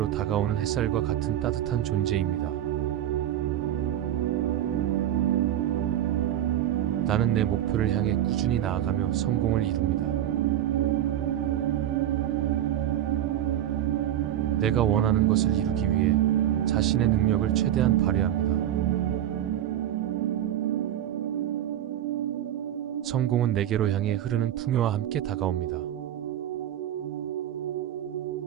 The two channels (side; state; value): left; quieter; 11.6 dB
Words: 다가오는 햇살과 같은 따뜻한 존재입니다. 나는 내 목표를 향해 꾸준히 나아가며 성공을 이룹니다. 내가 원하는 것을 이루기 위해 자신의 능력을 최대한 발휘합니다. 성공은 내게로 향해 흐르는 풍요와 함께 다가옵니다.